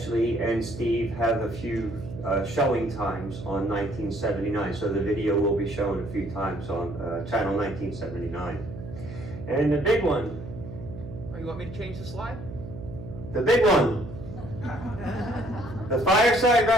and Steve have a few showing times on 1979, so the video will be shown a few times on Channel 1979. And the big one. Oh, you want me to change the slide? The big one. The Fireside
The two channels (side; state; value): right; noise; hum, 11 dB below the sound